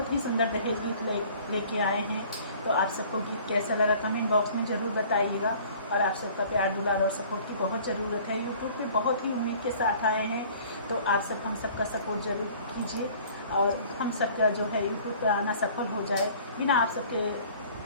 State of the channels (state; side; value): inverted; both; correlation -0.50